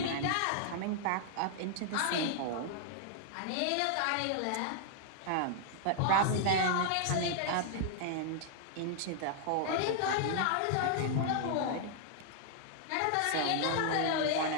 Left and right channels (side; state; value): both; different; correlation 0.00